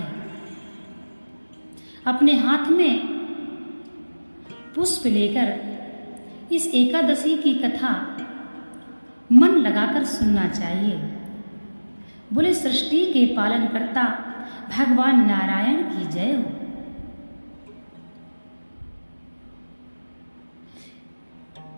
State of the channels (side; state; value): both; inverted; correlation -1.00